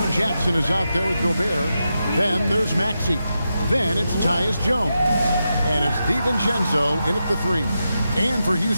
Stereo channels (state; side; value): inverted; both; correlation -0.88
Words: Jackson is out there with Gobert. Then there's Maxey. Then it's Tyus Jones. And it's DiVincenzo in at the 3. And for